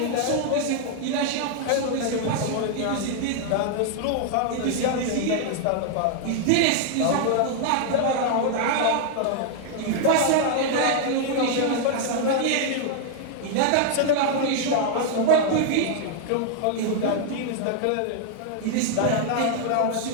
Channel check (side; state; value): both; different; correlation 0.00